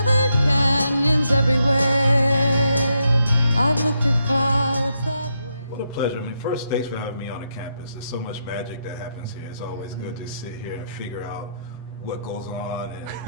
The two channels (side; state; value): both; inverted; correlation -0.81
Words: canyons everywhere. I've looked at clouds that way. What a pleasure. I mean, first, thanks for having me on the campus. There's so much magic that happens here. It's always good to sit here and figure out what goes on